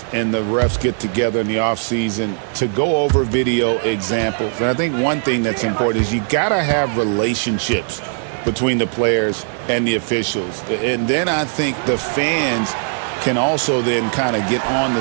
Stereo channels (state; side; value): silent; left; 65 dB below the other